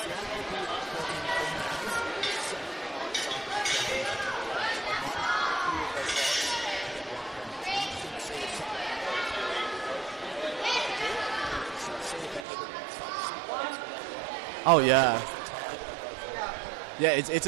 Oh yeah. Yeah, it's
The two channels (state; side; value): drops out; left; at 12.5 s